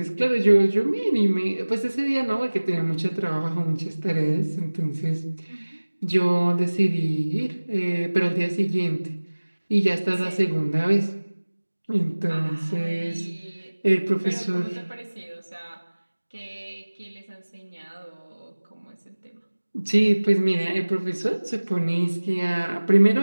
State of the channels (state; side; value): inverted; both; correlation -1.00